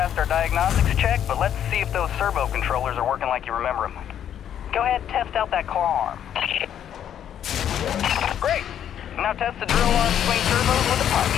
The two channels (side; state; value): right; quieter; 9.7 dB